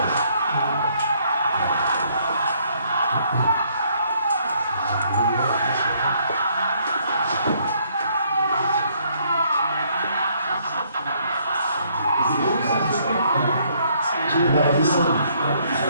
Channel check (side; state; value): both; inverted; correlation -0.67